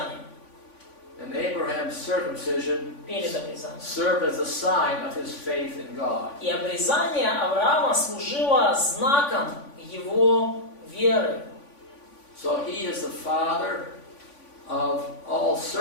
And Abraham's circumcision Перед обрезанием. served as a sign of his faith in God. И обрезание Авраама служило знаком его веры. So he is the father of all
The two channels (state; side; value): late; right; 3.5 ms